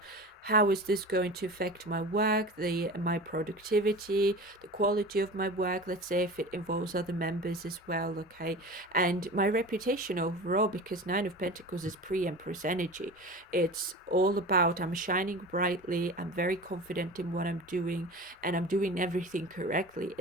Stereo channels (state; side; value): normal; both; correlation 0.34